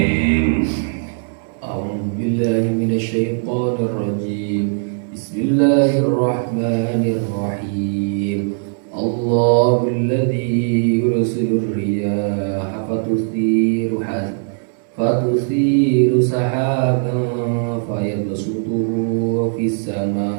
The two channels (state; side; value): silent; left; digital silence